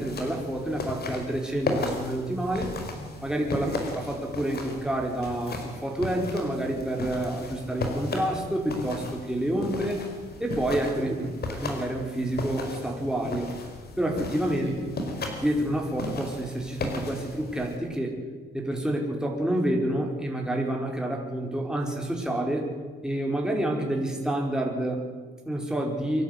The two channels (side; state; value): both; normal; correlation 0.75